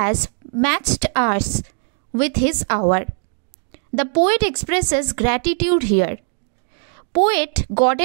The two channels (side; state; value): left; silent; 60 dB below the other